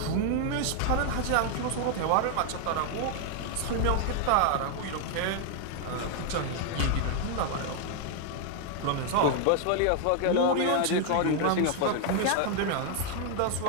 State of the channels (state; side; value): different; both; correlation 0.00